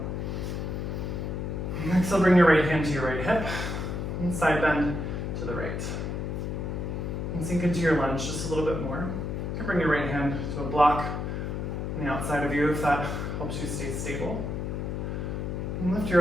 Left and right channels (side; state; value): left; noise; hum, 3 dB below the sound